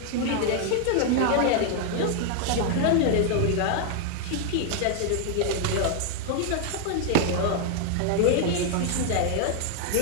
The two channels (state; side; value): different; both; correlation 0.00